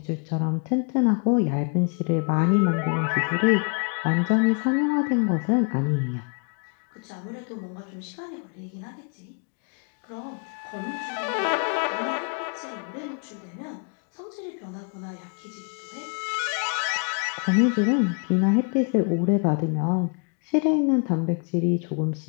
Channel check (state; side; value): quieter; right; 38.7 dB